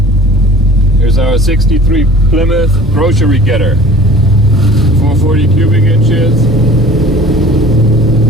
Here's our 63 Plymouth grocery getter. 440 cubic inches.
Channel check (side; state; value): both; normal; correlation 0.46